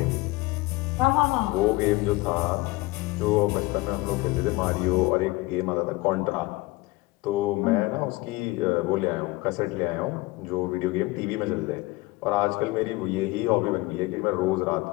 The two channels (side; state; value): right; quieter; 21.5 dB